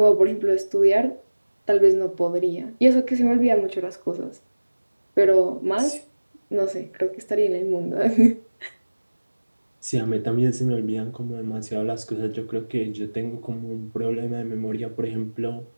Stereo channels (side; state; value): both; inverted; correlation -1.00